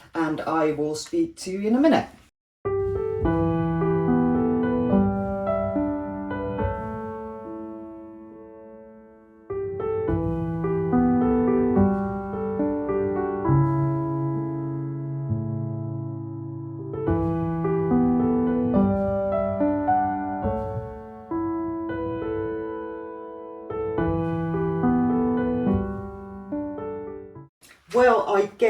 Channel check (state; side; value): identical; both; correlation 1.00